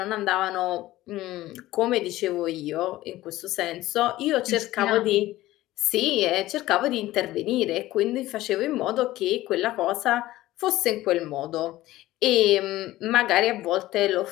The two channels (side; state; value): right; quieter; 16.4 dB